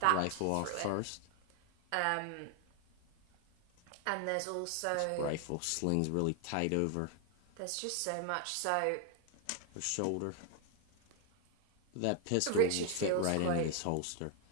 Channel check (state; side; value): different; both; correlation 0.01